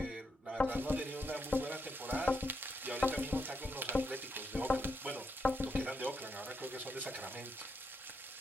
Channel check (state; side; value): normal; both; correlation 0.80